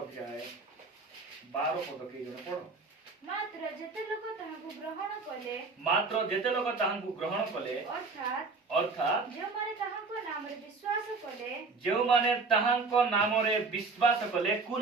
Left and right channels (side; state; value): left; quieter; 4.2 dB